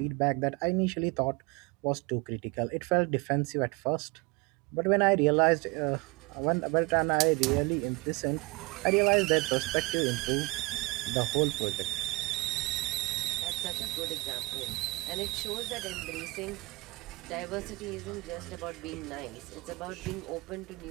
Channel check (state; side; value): quieter; left; 24.9 dB